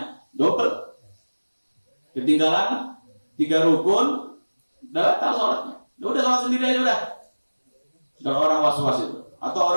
Double. Ketinggalan 3 rukun batal sholatnya. Udah sholat sendiri aja udah. Kalau orang was-was itu. Atau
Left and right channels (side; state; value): both; inverted; correlation -1.00